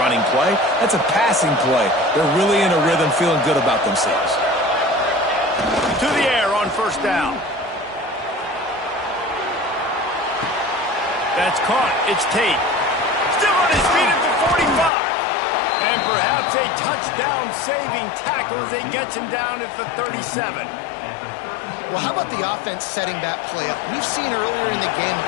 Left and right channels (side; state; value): right; drops out; at 14.9 s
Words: play. That's a passing play. They're really in a rhythm, feeling good about themselves. To the air on 1st down. That's caught. It's Tate. Still on his feet at the 45. And perhaps a touchdown-saving tackle as he gets him down at the 37. Well, how about the offense setting that play up? We've seen earlier in the game a